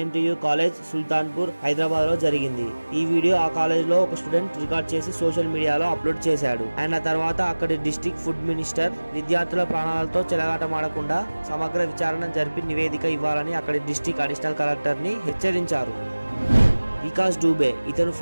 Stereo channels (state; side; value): inverted; both; correlation -1.00